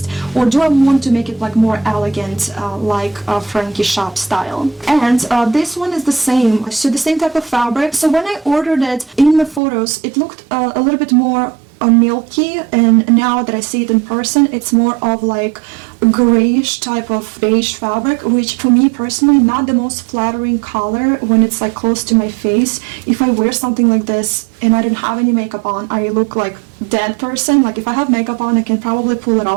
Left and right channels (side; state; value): left; drops out; at 9.6 s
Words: or do I want to make it like more elegant like Frankie shop style? And this one is the same, so the same type of fabric. So when I ordered it in the photos, it looked a little bit more milky, and now that I see it in person, it's more of like grayish type of beige fabric, which for me personally not the most flattering color when it's like close to my face. If I wear something like this and I don't have any makeup on, I look like dead person. Like if I have makeup on, I can probably pull it